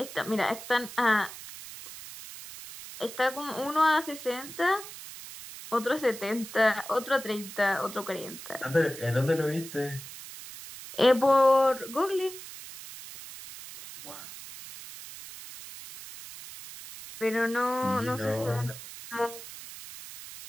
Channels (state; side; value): noise; right; hiss, 13 dB below the sound